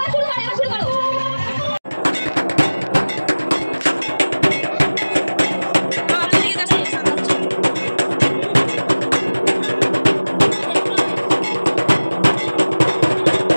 শুরু করো, এবার শুরু করো।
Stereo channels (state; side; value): inverted; both; correlation -1.00